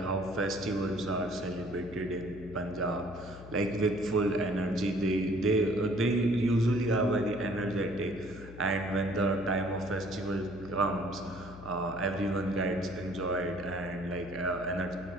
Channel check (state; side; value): noise; left; hum, 15 dB below the sound